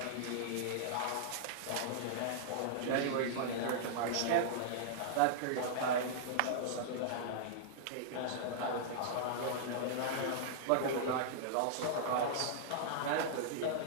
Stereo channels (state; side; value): different; both; correlation -0.01